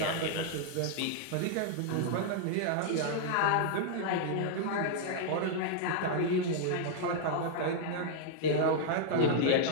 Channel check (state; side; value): different; both; correlation -0.01